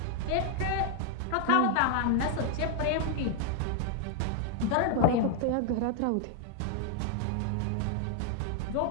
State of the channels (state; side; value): different; both; correlation 0.00